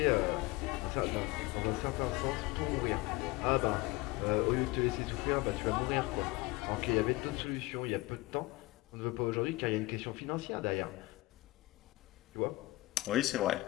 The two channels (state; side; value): quieter; right; 21.1 dB